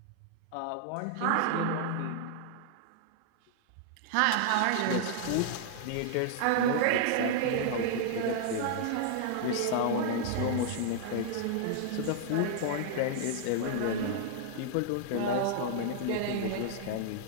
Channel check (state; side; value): different; both; correlation -0.01